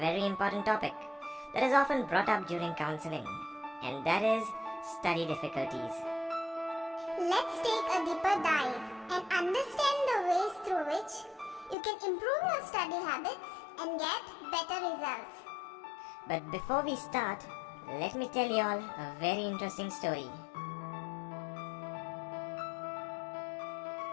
important topic that is often brought up during counseling, and that is study difficulties. Let's take a deeper dive and understand the ways through which you can improve your study habits and get better results. But before we start, let me tell you all a very interesting story.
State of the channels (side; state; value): right; drops out; at 11.8 s